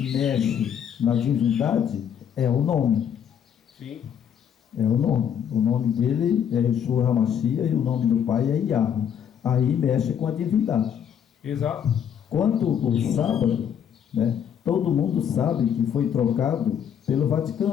mexe na divindade é o nome. Sim. É o nome. O nome dele é Yeshua HaMashiach e o nome do pai é Yahweh. Aí mexe com a divindade. Exato. Quanto o sábado, né, todo mundo sabe que foi trocado pelo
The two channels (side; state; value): right; quieter; 8.6 dB